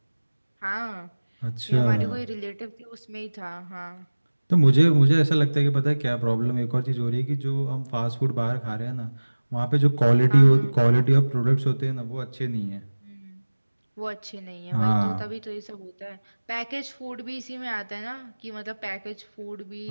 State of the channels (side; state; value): both; inverted; correlation -1.00